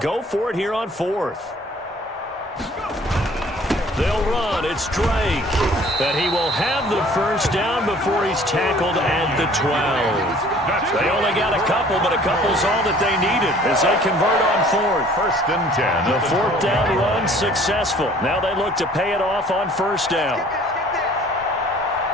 for it here on 4th. They'll run. It's Drake. And he will have the 1st down before he's tackled at the 12. They only got a couple, but a couple's all that they needed as they convert on 4th. 1st and 10. The 4th down run successful. Now they look to pay it off on 1st down.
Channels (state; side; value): normal; both; correlation 0.53